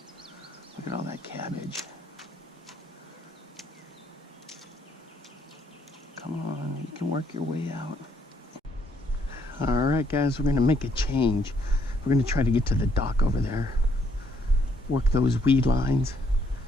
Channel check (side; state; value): both; normal; correlation 0.69